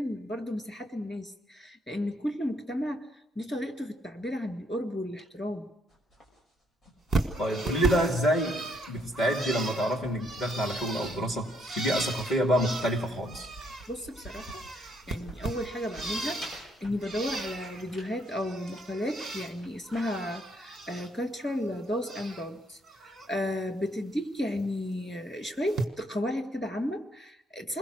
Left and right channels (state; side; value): normal; both; correlation 0.71